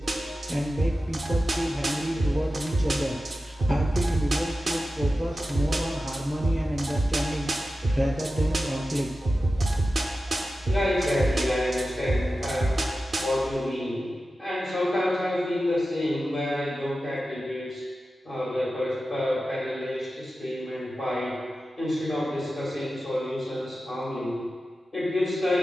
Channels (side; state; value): both; normal; correlation 0.93